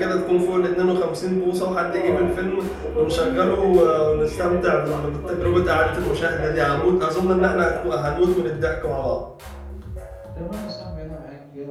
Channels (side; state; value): both; identical; correlation 1.00